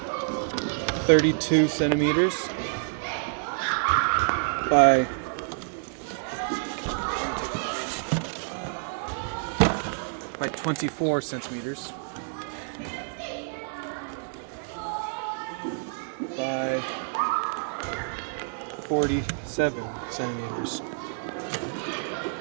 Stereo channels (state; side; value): silent; left; digital silence